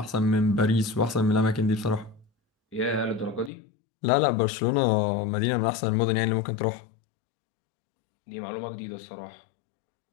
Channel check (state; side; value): drops out; right; at 3.5 s